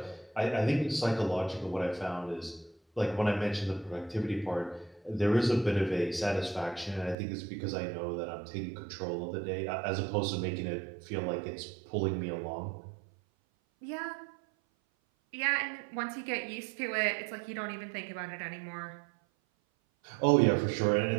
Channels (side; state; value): left; drops out; at 7.2 s